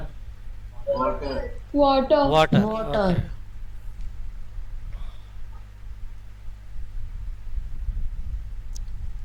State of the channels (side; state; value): both; identical; correlation 1.00